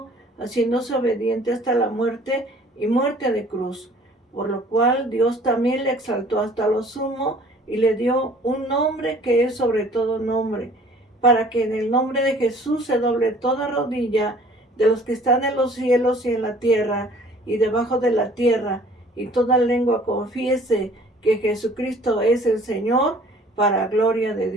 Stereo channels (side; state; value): both; normal; correlation 0.53